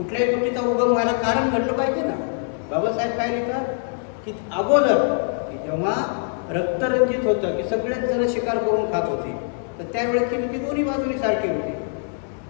गोष्टीचा उगम व्हायला कारण घडलं पाहिजे ना. बाबासाहेब काय लिहितात की अगोदर की जेव्हा रक्तरंजित होतं, की सगळेच जण शिकार करून खात होते, तर त्यावेळेची नीती दोन्ही बाजूनी सारखी होती.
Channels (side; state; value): right; silent; 59 dB below the other